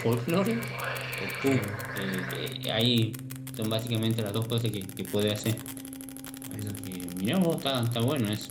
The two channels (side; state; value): both; identical; correlation 1.00